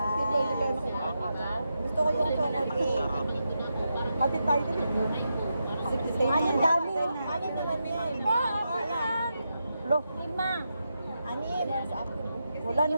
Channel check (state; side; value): inverted; both; correlation -0.86